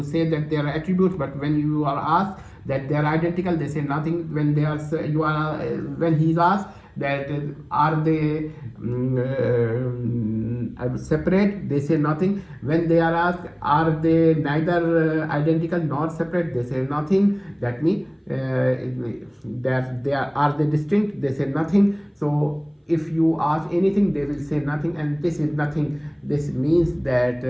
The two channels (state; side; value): identical; both; correlation 1.00